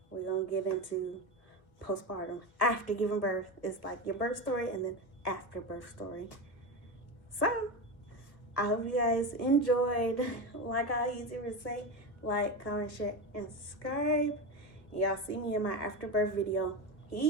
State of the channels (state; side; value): late; right; 1.6 ms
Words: we're gonna get into postpartum after giving birth. It's like your birth story and then after birth story. So I hope you guys enjoyed. Like I usually say, like, comment, share, and subscribe. And y'all see me in my after birth video.